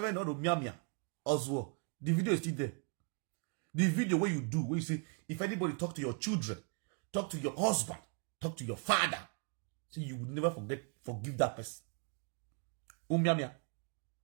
him not to mia Oswald, the video is still there. The video where you do, where you say, if anybody talk to your children, talk to your husband, talk to your father, so you would never forgive that person. Mia.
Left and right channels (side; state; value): left; quieter; 38.5 dB